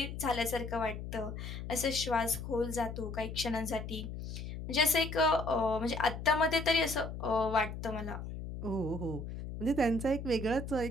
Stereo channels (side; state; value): left; noise; hum, 7 dB below the sound